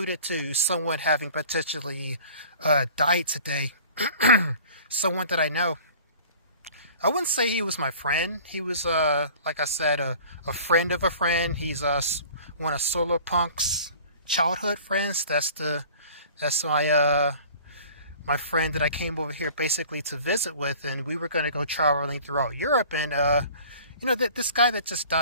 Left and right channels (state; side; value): inverted; both; correlation -0.46